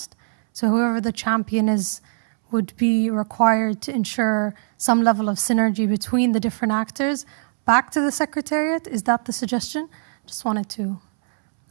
So whoever the champion is would be required to ensure some level of synergy between the different actors back to the Secretariat. Is that the suggestion? Just wanted to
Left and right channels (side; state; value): left; silent; 65 dB below the other